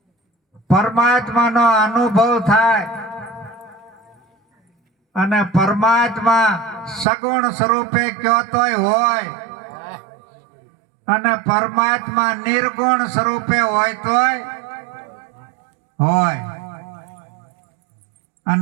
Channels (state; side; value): drops out; left; at 7.1 s